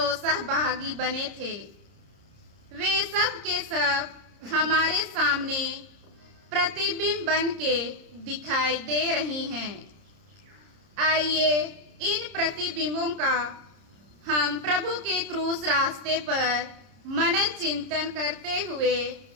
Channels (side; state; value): left; late; 30 ms